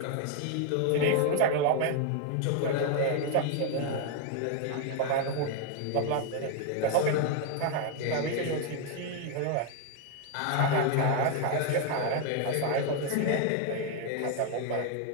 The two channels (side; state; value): both; different; correlation 0.00